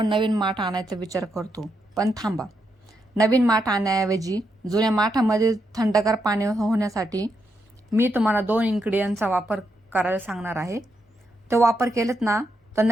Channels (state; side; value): normal; both; correlation 0.81